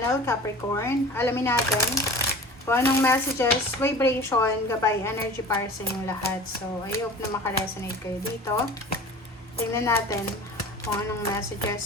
Capricorn. Alamin natin kung anong messages, vibration, gabay, energy para sa inyong lahat. So, I hope na makaresonate kayo dito. Tingnan natin kung anong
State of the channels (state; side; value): normal; both; correlation 0.40